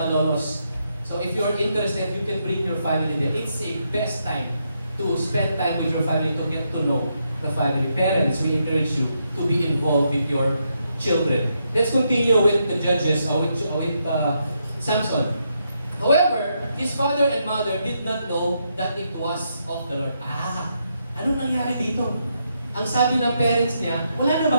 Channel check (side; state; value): both; inverted; correlation -0.80